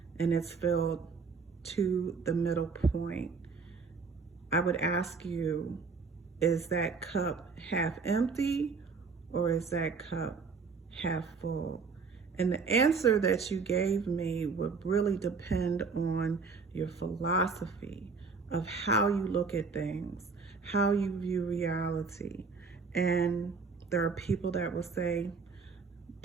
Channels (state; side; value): quieter; left; 4.8 dB